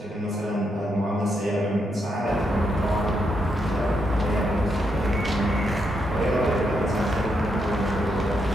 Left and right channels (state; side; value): normal; both; correlation 0.80